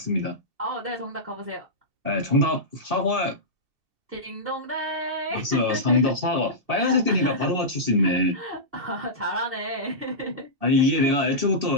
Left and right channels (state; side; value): late; left; 2.7 ms